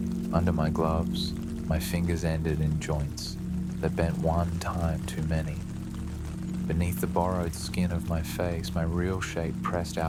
Under my gloves, my fingers ended in joints that bent one time too many. Beneath the borrowed skin of my face, my real shape pressed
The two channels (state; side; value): identical; both; correlation 1.00